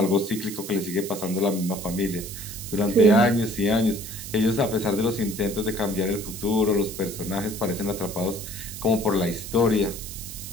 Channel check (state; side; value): noise; right; hiss, 10 dB below the sound